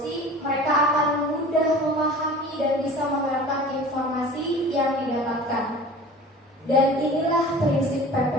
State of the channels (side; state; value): both; normal; correlation 0.41